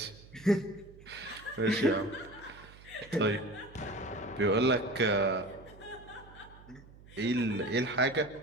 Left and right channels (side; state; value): right; noise; hum, 21 dB below the sound